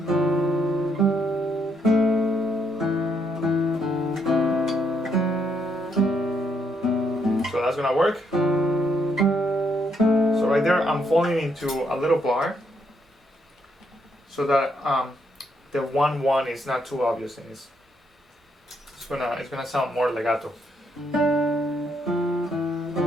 So that's gonna work. So right there, I'm falling into a little bar, so that the 1-1 is not too obvious, and it's gonna sound more legato.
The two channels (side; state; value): both; normal; correlation 0.75